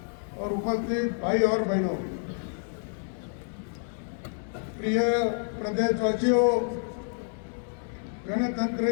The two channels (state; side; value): silent; right; 59 dB below the other